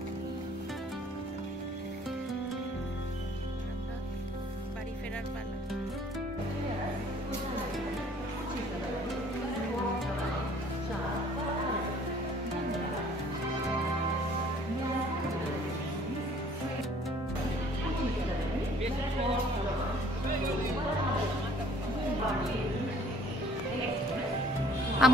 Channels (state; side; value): normal; both; correlation 0.56